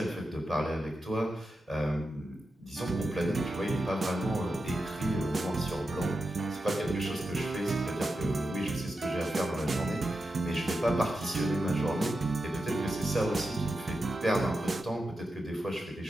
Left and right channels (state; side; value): normal; both; correlation 0.89